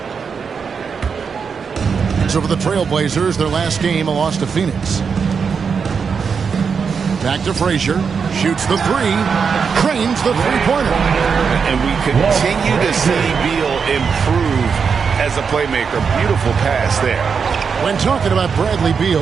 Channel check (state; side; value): quieter; left; 6.0 dB